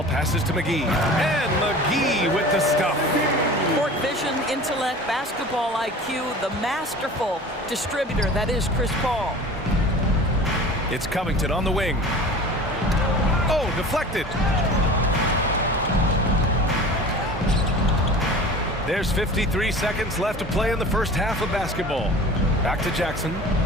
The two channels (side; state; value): both; normal; correlation 0.39